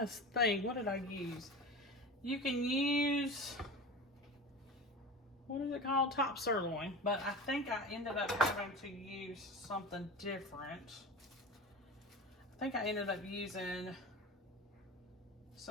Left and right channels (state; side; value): normal; both; correlation 0.31